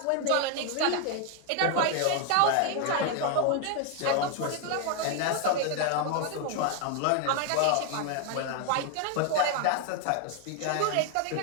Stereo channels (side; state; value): both; different; correlation 0.01